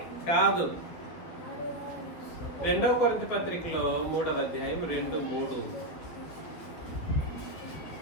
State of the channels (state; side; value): late; right; 12 ms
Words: కాదు, 2వ కొరింథీ పత్రికలో 3వ అధ్యాయం 2-3.